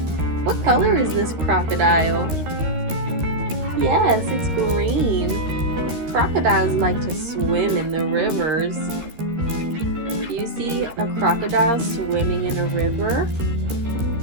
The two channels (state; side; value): late; left; 13 ms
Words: What color is this crocodile? Yes, it's green. Crocodiles like to swim in the rivers. Do you see a crocodile swimming in a river?